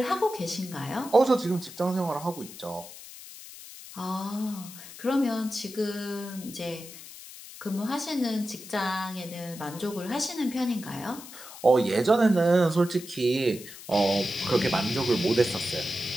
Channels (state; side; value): noise; left; hiss, 15 dB below the sound